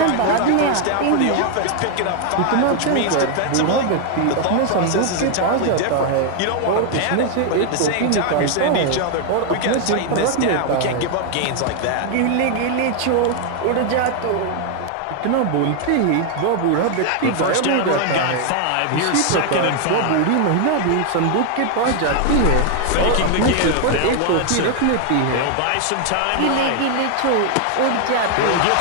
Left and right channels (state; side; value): different; both; correlation 0.00